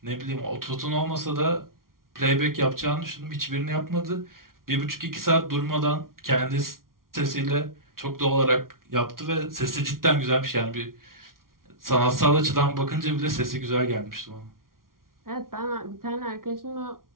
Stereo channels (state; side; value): late; left; 0.92 ms